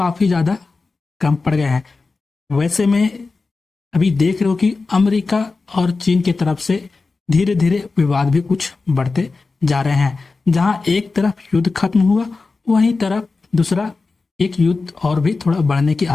ज्यादा कम पड़ गए हैं। वैसे में अभी देख रहे हो कि अमेरिका और चीन की तरफ से धीरे धीरे विवाद भी कुछ बढ़ते जा रहे हैं। जहां एक तरफ युद्ध खत्म हुआ वहीं तरफ दूसरा एक युद्ध और भी थोड़ा बढ़ने की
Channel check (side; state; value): right; quieter; 4.0 dB